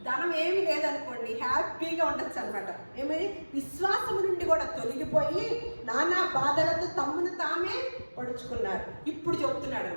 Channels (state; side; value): inverted; both; correlation -1.00